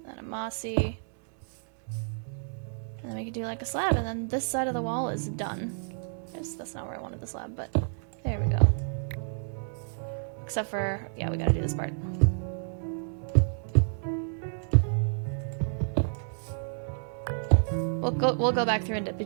and then a mossy. And then we can do like a slab, and then this side of the wall is done. That's not where I wanted the slab, but there we go. Except for, yeah, we gotta do this part. We'll go back through and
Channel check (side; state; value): left; silent; digital silence